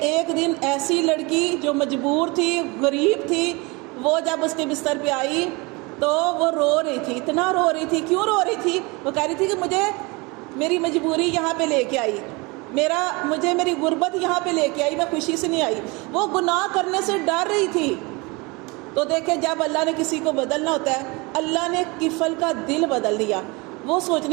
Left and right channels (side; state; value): left; quieter; 26.4 dB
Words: ایک دن ایسی لڑکی جو مجبور تھی، غریب تھی، وہ جب اس کے بستر پہ آئی تو وہ رو رہی تھی، اتنا رو رہی تھی۔ کیوں رو رہی تھی؟ وہ کہہ رہی تھی کہ مجھے میری مجبوری یہاں پہ لے کے آئی، مجھے میری غربت یہاں پہ لے کے آئی، میں خوشی سے نہیں آئی، وہ گناہ کرنے سے ڈر رہی تھی۔ تو دیکھیں جب اللہ نے کسی کو بدلنا ہوتا ہے، اللہ نے کفل کا دل بدل دیا۔ وہ